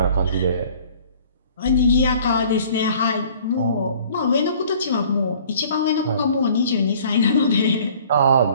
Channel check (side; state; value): both; inverted; correlation -0.52